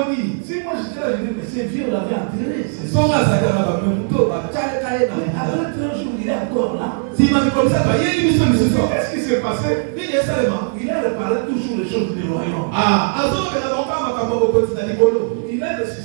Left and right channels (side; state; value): left; silent; digital silence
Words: Si moi j'étais là, je dis, mais c'est vieux, on l'avait enterré. Après 3 jours, il est encore là. Qu'est-ce qui s'est passé? Il a réparé toujours les choses du royaume. Il a